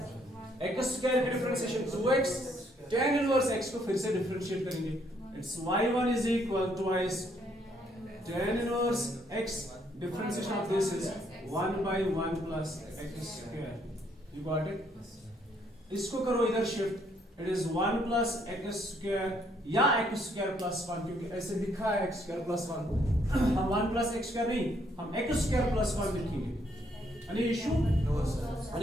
x स्क्वायर की differentiation 2x, tan inverse x को फिर से डिफरेंशिएट करेंगे। It's y1 is equal to twice tan inverse x, differentiation of this is 1/1 plus x square। You got it? इसको करो इधर shift, it is 1 plus x square या x square plus 1, क्योंकि ऐसे लिखा है x square plus 1। हम 1 plus x square नहीं, हम x square plus 1 लिखेंगे। Any issue? No sir।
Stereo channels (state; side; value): normal; both; correlation 0.70